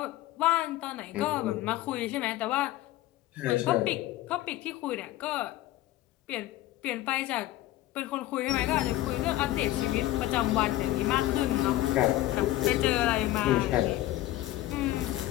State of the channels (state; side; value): quieter; right; 15.8 dB